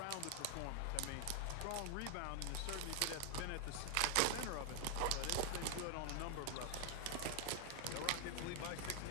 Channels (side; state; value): both; different; correlation 0.00